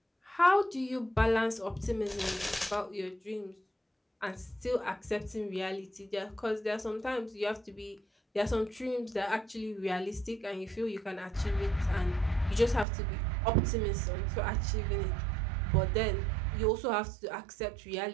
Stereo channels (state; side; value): drops out; left; at 12.9 s